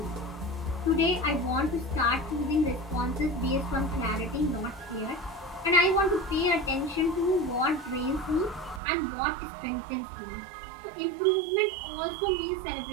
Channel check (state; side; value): drops out; left; at 8.8 s